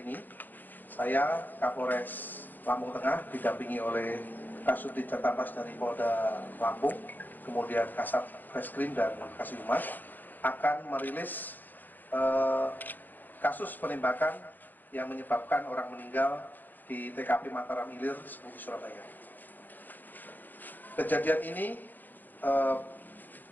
ini, saya Kapolres Lampung Tengah didampingi oleh Kasubdit Jatantras dari Polda Lampung, kemudian Kasat Reskrim dan Kasih Humas akan merilis kasus penembakan yang menyebabkan orang meninggal di TKP Mataram Ilir, Seputi Surabaya. Kejadian ini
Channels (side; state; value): right; late; 0.087 ms